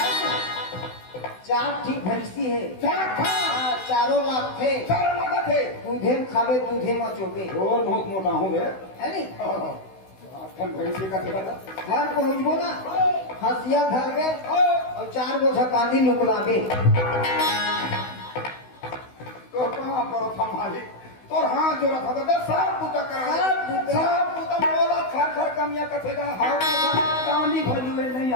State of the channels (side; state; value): right; late; 16 ms